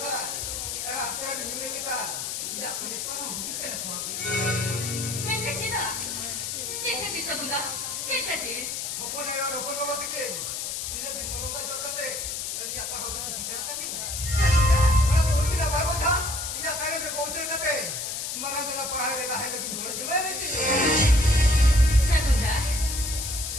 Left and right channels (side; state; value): left; noise; hiss, 4 dB below the sound